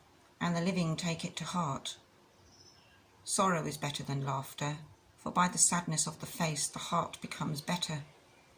and the living take it to heart. Sorrow is better than laughter, for by the sadness of the face the heart becomes better.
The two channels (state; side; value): identical; both; correlation 1.00